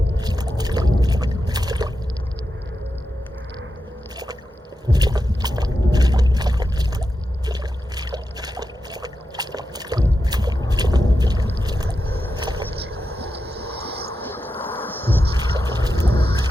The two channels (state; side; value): normal; both; correlation 0.89